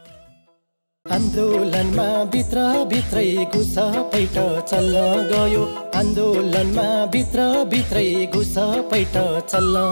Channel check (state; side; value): inverted; both; correlation -1.00